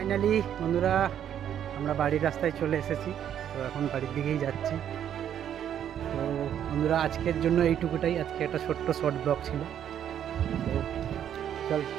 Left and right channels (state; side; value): quieter; left; 9.8 dB